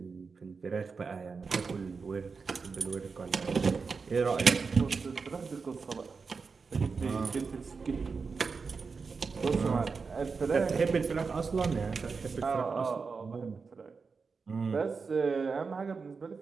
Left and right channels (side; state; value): left; quieter; 4.9 dB